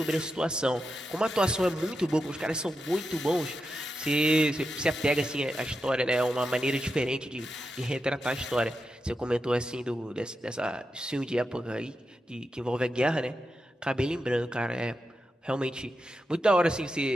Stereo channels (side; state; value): both; normal; correlation 0.88